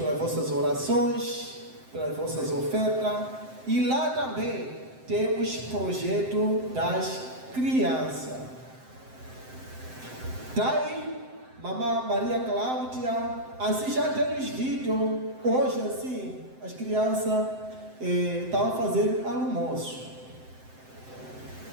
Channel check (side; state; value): left; late; 7.7 ms